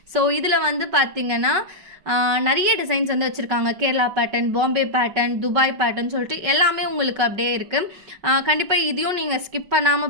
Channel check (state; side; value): late; left; 5.3 ms